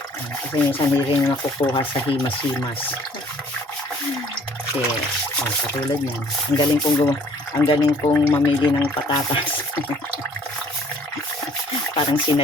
Kasi minsan rin nakukuha sa himas-himas. Kasi, katulad niyan. Ang galing kong mamili ng patatas. Parang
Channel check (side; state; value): both; normal; correlation 0.57